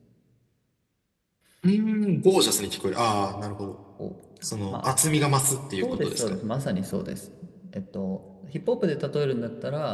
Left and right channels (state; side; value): identical; both; correlation 1.00